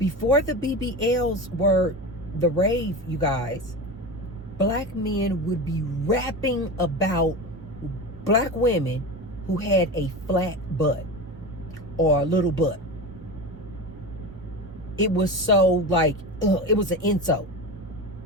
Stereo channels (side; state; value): both; normal; correlation 0.26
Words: the BBLs were the rave, you guys, black men would be rapping about black women who had a flat butt or a little butt. It was so like, it was an insult.